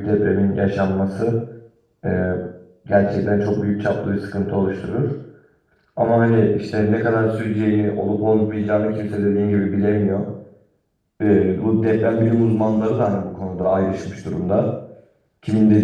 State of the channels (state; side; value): identical; both; correlation 1.00